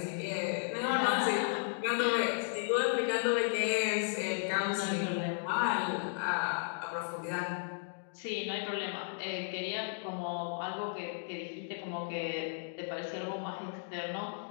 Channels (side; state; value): right; silent; digital silence